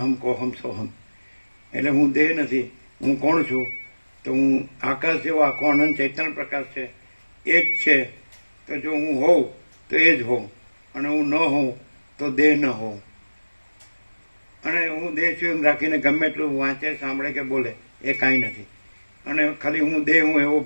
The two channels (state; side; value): inverted; both; correlation -1.00